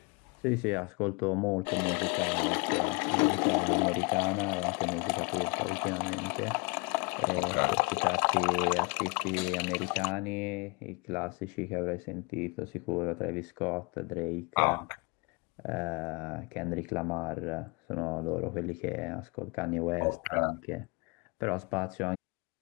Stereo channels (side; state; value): right; quieter; 30.4 dB